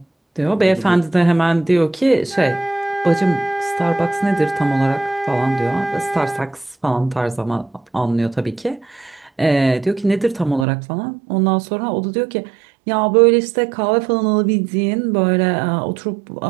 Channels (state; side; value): drops out; left; at 10.7 s